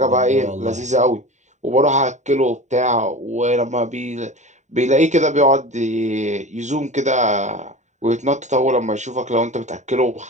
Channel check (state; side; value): late; left; 0.34 ms